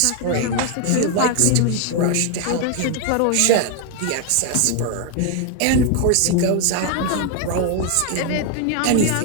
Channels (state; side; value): different; both; correlation 0.01